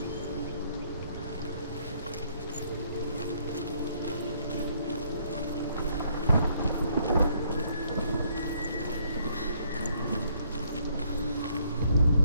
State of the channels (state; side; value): inverted; both; correlation -0.67